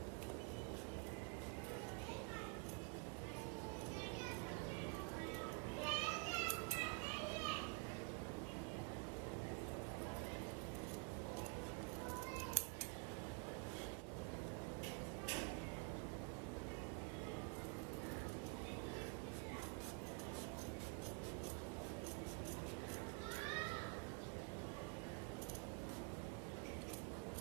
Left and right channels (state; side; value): quieter; left; 32.2 dB